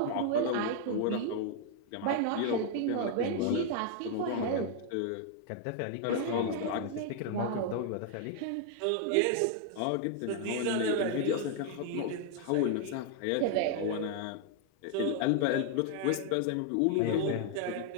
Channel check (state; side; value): different; both; correlation 0.00